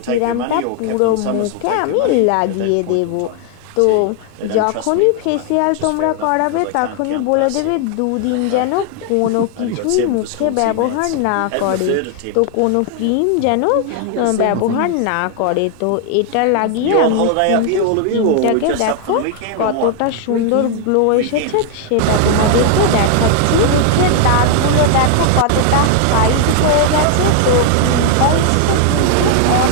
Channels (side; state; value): both; different; correlation 0.00